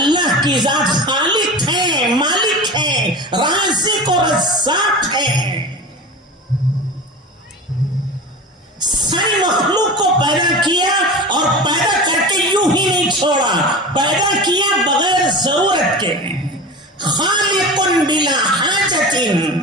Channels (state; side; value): normal; both; correlation 0.32